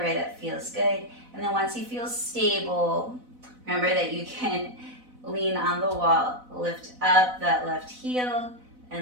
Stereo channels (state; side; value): late; left; 4.0 ms